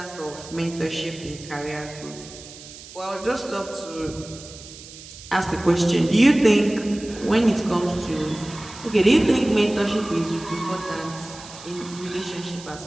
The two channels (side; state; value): right; noise; hiss, 16 dB below the sound